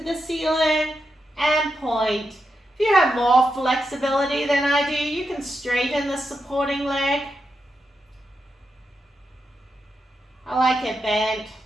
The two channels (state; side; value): normal; both; correlation 0.86